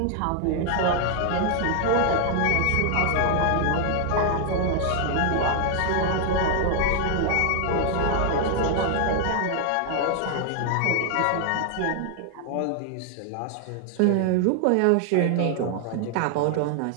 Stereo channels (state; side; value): different; both; correlation 0.00